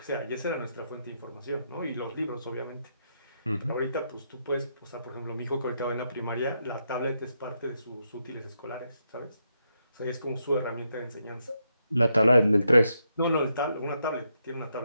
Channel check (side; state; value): both; inverted; correlation -0.81